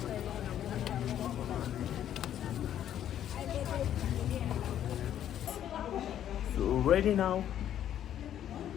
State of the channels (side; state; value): right; quieter; 10.7 dB